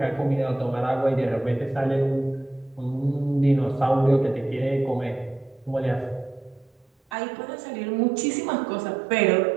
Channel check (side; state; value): left; drops out; at 7.2 s